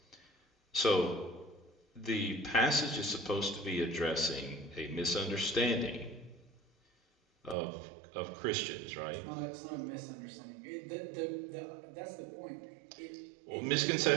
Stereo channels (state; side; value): drops out; left; at 7.6 s